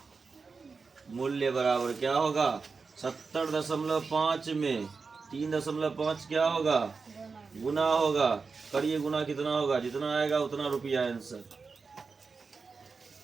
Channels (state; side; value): quieter; left; 4.7 dB